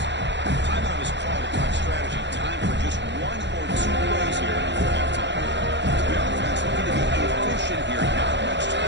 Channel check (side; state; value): left; late; 0.52 ms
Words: Timeout is called to talk strategy. Time for just 1 or 2 plays here before halftime. The offense looking to be efficient here. Not much